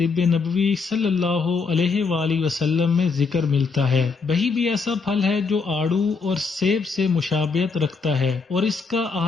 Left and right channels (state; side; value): quieter; right; 4.7 dB